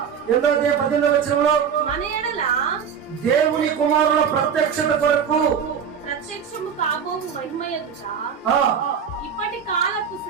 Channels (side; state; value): left; quieter; 7.3 dB